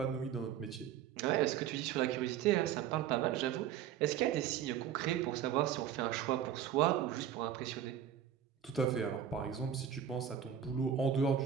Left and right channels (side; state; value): left; quieter; 9.4 dB